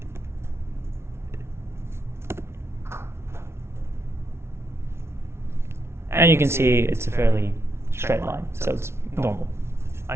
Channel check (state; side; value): late; left; 0.12 ms